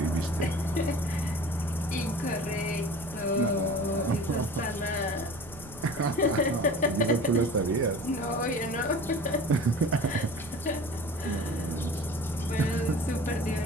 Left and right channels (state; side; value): noise; right; rumble, 18 dB below the sound